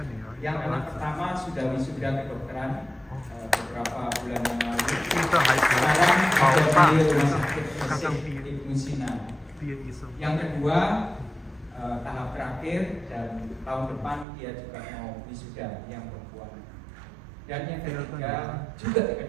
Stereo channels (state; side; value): drops out; left; at 14.2 s